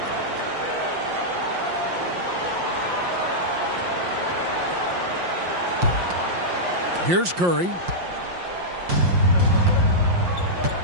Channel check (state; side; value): late; left; 5.7 ms